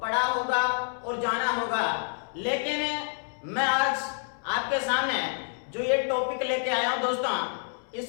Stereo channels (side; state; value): right; silent; 59 dB below the other